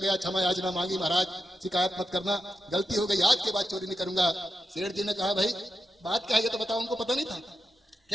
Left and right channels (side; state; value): both; normal; correlation 0.87